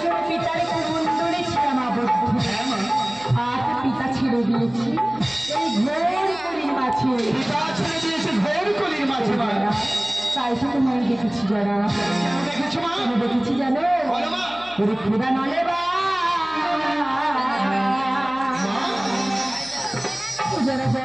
পিতার কুমন্ডলে ছিলাম আবদ্ধ। হ্যাঁ মা, আজ পিতা ছেড়ে দিয়েছি এই ঘোর কলির মাঝে। পিতা ছেড়ে দিয়েছে ঘোর কলির মাঝে মা। তাই তো তোমায় দেখেছি যারা। কেন দেখেছো মা? কেন দেখেছি জানো? বলো মা। ওরে খোদা নলে বা যারা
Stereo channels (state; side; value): noise; left; hum, 22 dB below the sound